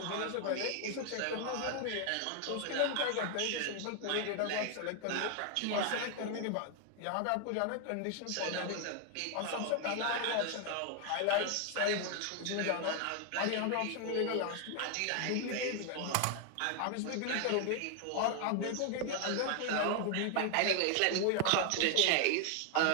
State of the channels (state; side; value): different; both; correlation 0.00